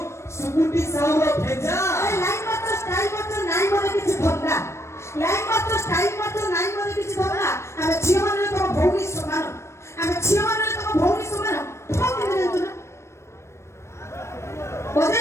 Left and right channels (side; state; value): right; late; 0.13 ms